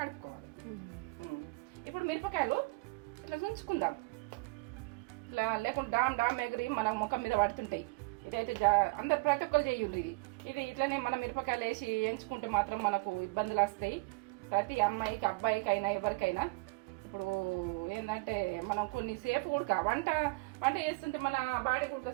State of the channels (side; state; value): left; quieter; 26.8 dB